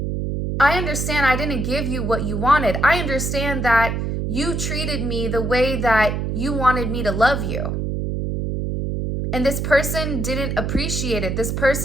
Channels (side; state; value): right; noise; hum, 1 dB below the sound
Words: I understand I didn't give you what you wanted. I understand that you treated me the way that you wanted me to love you. And this person didn't appreciate it. This